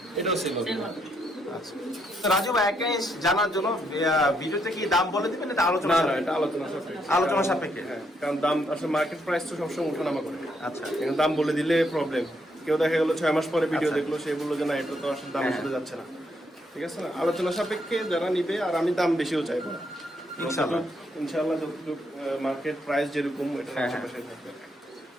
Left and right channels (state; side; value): normal; both; correlation 0.75